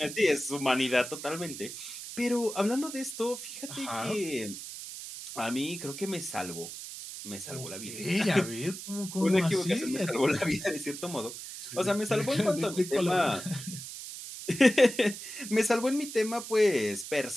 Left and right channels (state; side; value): noise; right; hiss, 10 dB below the sound